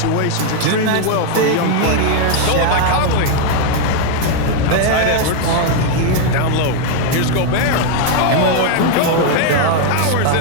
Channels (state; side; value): different; both; correlation 0.00